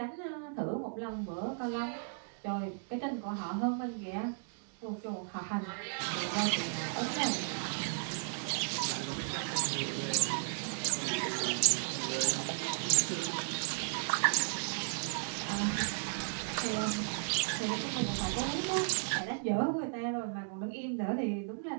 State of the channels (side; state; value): left; silent; digital silence